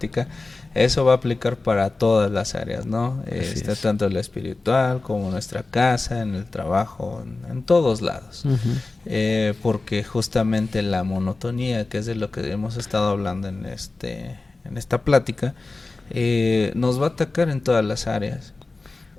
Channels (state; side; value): quieter; right; 3.4 dB